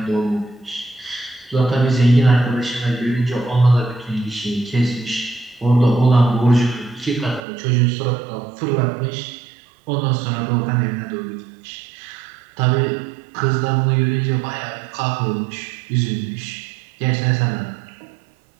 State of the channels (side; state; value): left; drops out; at 7.4 s